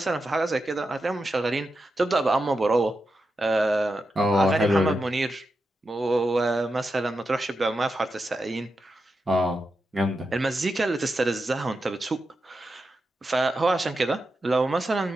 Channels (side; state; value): both; normal; correlation 0.88